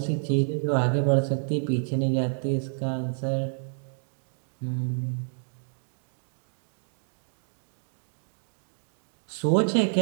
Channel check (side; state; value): left; silent; digital silence